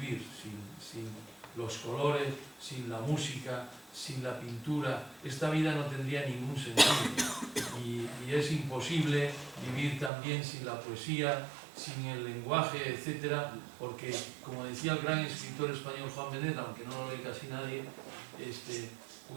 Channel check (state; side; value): drops out; left; at 10.1 s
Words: sin los colores, sin la música, sin la pintura. Esta vida no tendría ningún sentido, y es imposible vivir también sin la poesía, sin el lenguaje, etcétera, porque, como decía el gran escritor español Juan Benet, aunque no lo lee casi nadie,